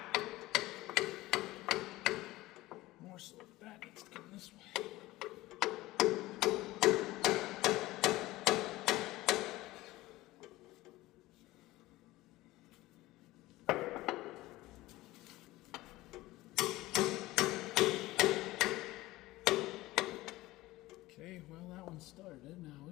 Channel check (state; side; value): quieter; right; 18.3 dB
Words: more so that needs to come this way. Okay, well, that one started. Now,